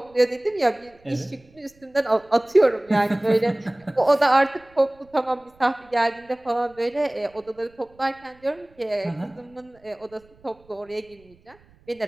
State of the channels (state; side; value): noise; right; rumble, 29 dB below the sound